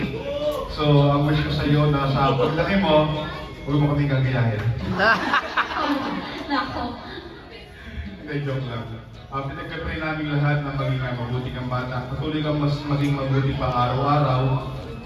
So, ang wish ko sa iyo na sa paglaki mo, huwag mo kaming gagayahin. Nako. Hindi, joke lang. Pinagkatry namin lahat na maging mabuti kang bata. Patuloy kang mas maging mabuti pa araw-araw.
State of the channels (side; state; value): both; identical; correlation 1.00